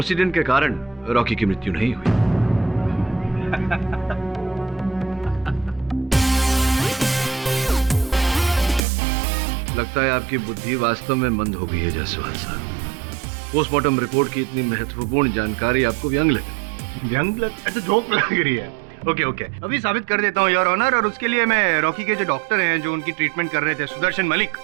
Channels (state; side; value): drops out; left; at 8.8 s